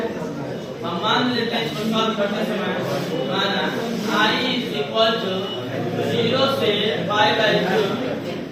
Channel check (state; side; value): identical; both; correlation 1.00